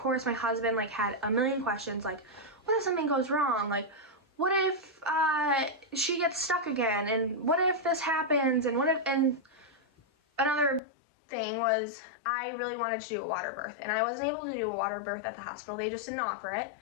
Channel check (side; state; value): right; drops out; at 10.8 s